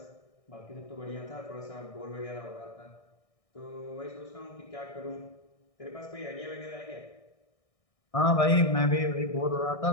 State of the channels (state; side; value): late; right; 1.6 ms